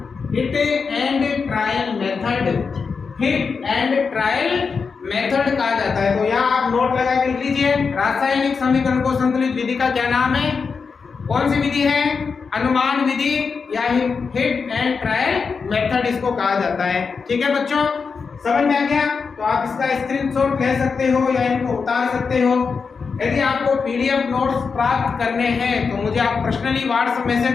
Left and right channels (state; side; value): quieter; right; 5.3 dB